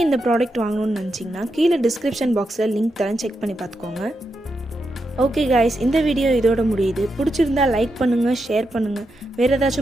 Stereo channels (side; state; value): both; normal; correlation 0.85